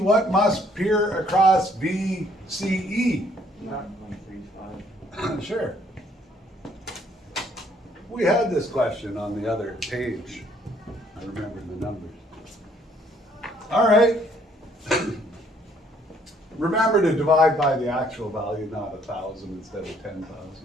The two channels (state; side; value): normal; both; correlation 0.64